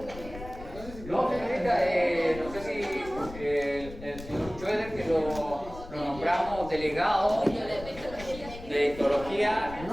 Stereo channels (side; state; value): left; noise; rumble, 14 dB below the sound